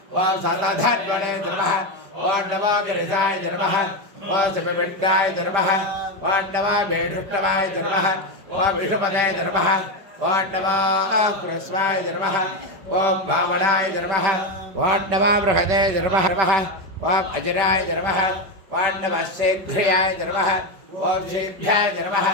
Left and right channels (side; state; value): left; late; 5.1 ms